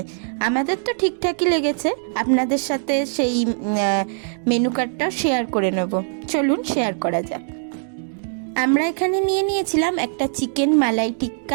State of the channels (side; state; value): left; silent; digital silence